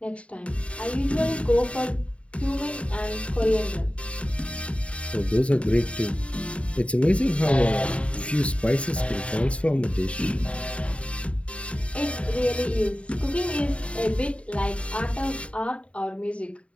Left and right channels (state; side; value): late; right; 0.062 ms